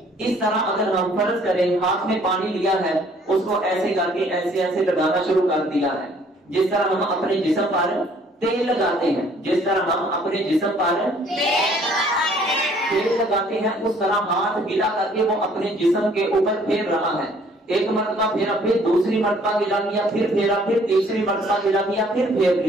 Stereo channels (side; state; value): both; normal; correlation 0.59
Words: اس طرح اگر ہم فرض کریں ہاتھ میں پانی لیا ہے اس کو ایسے کر کے ایسے ایسے لگانا شروع کر دیا ہے، جس طرح ہم اپنے جسم پر تیل لگاتے ہیں، جس طرح ہم اپنے جسم پر تیل لگاتے ہیں اس طرح ہاتھ گیلا کر کے وہ اپنے جسم کے اوپر پھیر رہا ہے، ایک مرتبہ پھیرا، پھر دوسری مرتبہ گیلا کیا، پھر پھیرا، پھر تیسری مرتبہ گیلا کیا، پھر پھیر